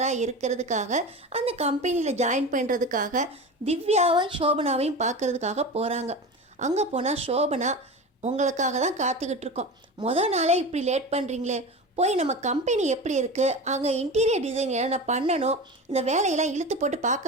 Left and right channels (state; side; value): normal; both; correlation 0.28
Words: இருக்கிறதுக்காக அந்த கம்பெனியில் ஜாயின் பண்ணுறதுக்காக திவ்யாவையும் சோபனாவையும் பார்க்குறதுக்காக போகிறாங்க. அங்கே போனால் சோபனா, உங்களுக்காக தான் காத்துக்கிட்டு இருக்கோம், மொதல் நாளே இப்படி லேட் பண்ணுறீங்களே, போய் நம்ம கம்பெனி எப்படி இருக்குது, அங்கே இன்டீரியர் டிசைன் என்னென்ன பண்ணணும், இந்த வேலையெல்லாம் இழுத்து போட்டு